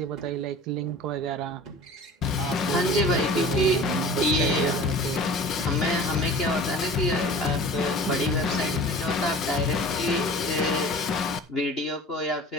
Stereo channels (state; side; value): normal; both; correlation 0.41